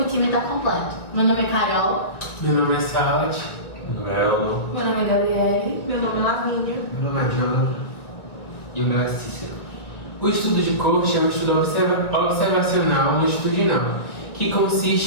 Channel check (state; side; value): late; right; 2.1 ms